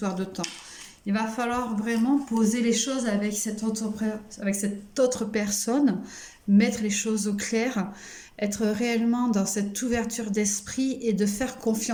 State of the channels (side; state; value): both; identical; correlation 1.00